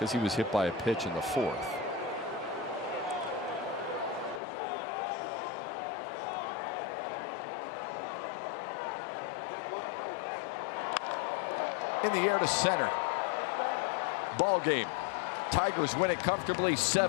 he was hit by a pitch in the 4th. In the air to center. Ball game. Tigers win it comfortably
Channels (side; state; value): right; drops out; at 4.4 s